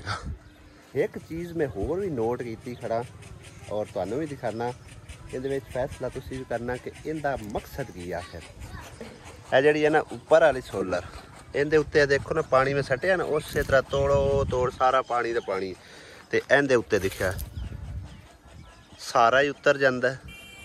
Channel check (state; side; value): identical; both; correlation 1.00